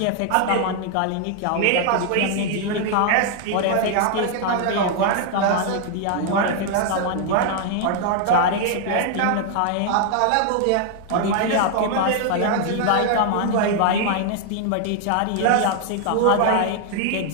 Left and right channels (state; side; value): different; both; correlation 0.00